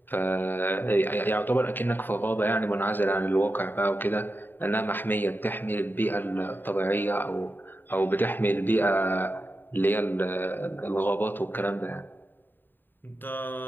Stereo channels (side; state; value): right; late; 0.092 ms